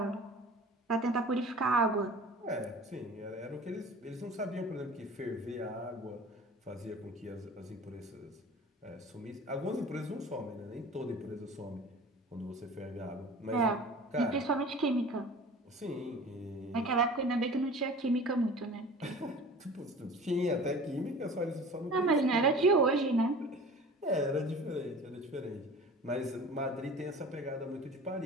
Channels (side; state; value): both; normal; correlation 0.41